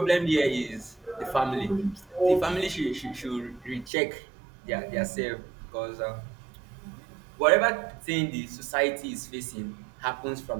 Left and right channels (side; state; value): left; drops out; at 3.9 s